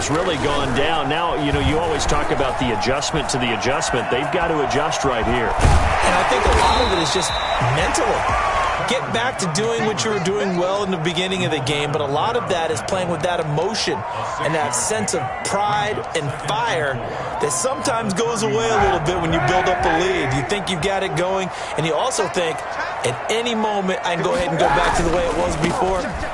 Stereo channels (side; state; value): both; identical; correlation 1.00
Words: really gone down. Now, you know, you always talk about the adjustment to the adjustment. They've got to adjust right here. And I think a lot of it is just mentally. get back to doing what you were doing well in the beginning of the game, but a lot of that is playing with that emotion and that sense of pride and fire that sometimes goes away a little bit when you build up a lead. You think you've got it going, and you also think at any moment I can go ahead and go back to the way it was before.